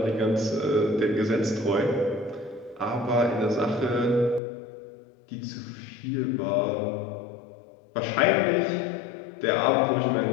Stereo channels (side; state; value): right; drops out; at 4.4 s